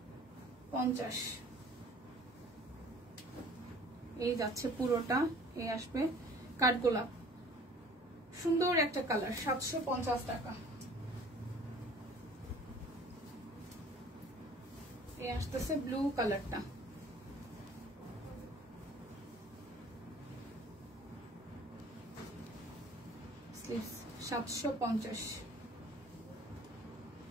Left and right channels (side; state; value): both; normal; correlation 0.50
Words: এই যাচ্ছে পুরোটা, এই আসবে কাঠগোলাপ, সুন্দর একটা কালার, 750 টাকা। এই আসতেছে ব্লু কালারটা, স্লিভস 750।